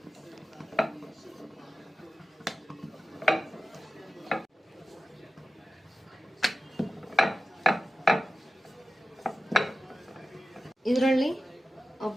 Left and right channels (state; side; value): normal; both; correlation 0.94